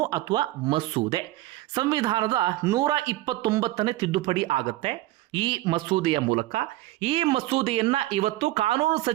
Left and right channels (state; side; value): quieter; left; 17.1 dB